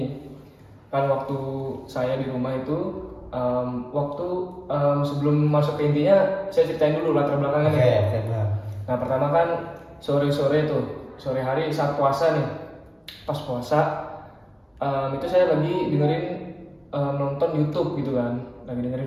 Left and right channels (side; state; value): both; identical; correlation 1.00